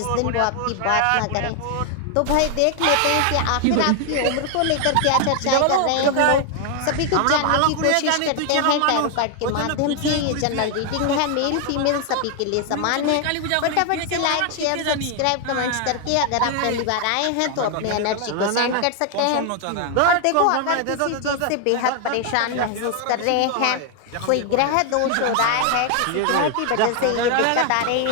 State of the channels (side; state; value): both; different; correlation 0.00